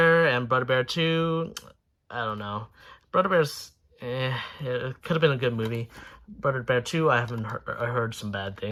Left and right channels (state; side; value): identical; both; correlation 1.00